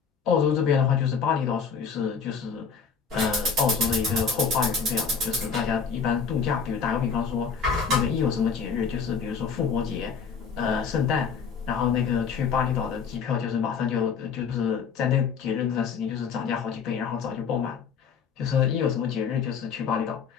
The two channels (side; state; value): right; quieter; 6.1 dB